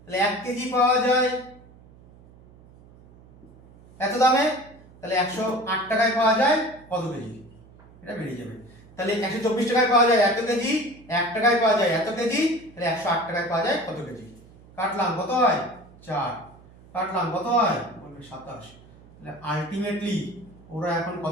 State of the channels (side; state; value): right; noise; hum, 24 dB below the sound